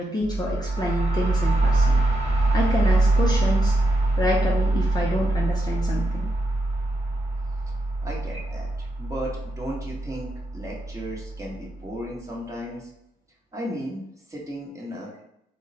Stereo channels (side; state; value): both; normal; correlation 0.84